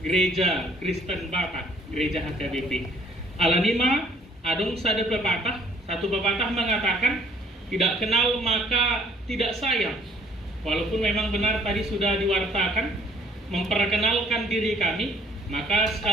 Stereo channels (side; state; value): both; normal; correlation 0.60